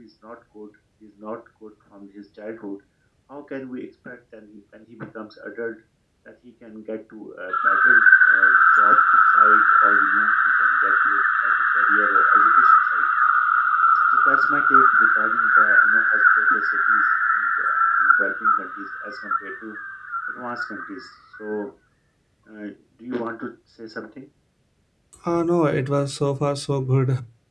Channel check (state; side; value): identical; both; correlation 1.00